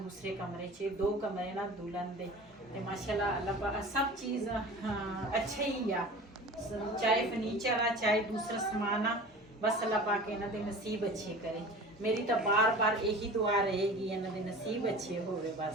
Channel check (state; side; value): normal; both; correlation 0.38